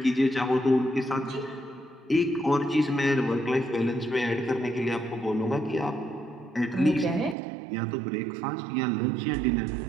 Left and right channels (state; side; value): drops out; left; at 7.4 s